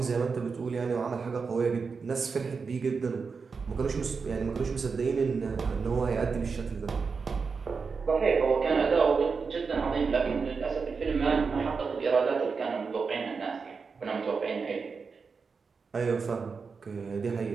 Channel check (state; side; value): quieter; left; 5.1 dB